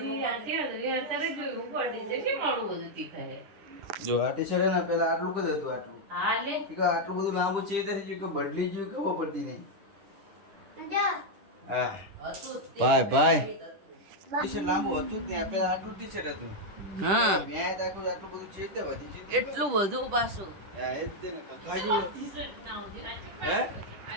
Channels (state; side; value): late; left; 10 ms